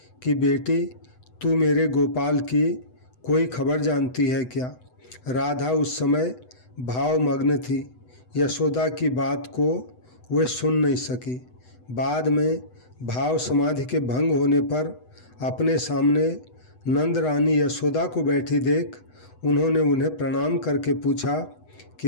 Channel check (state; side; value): late; right; 8.0 ms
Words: कि बेटी, तू मेरे गोपाल की कोई खबर जानती है क्या? राधा उस समय भावमग्न थी। यशोदा की बात को वे सुन नहीं सकी। बाद में भाव समाधि के भंग होने पर अपने सामने नंद रानी यशोदा को बैठी देख उन्होंने उन्हें प्रणाम करके पूछा